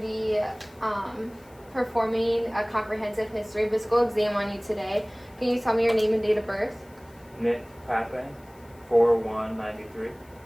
be performing a comprehensive history physical exam on you today. Can you tell me your name and date of birth? Nick Pape, 4/1/93.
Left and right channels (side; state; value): left; noise; hiss, 29 dB below the sound